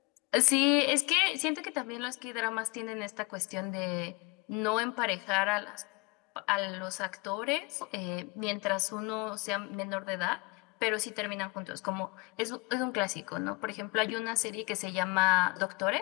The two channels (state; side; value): quieter; right; 27.4 dB